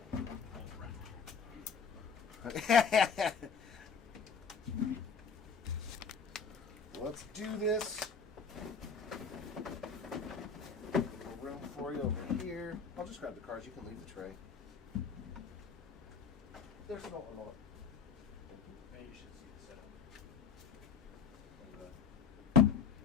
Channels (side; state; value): right; quieter; 5.8 dB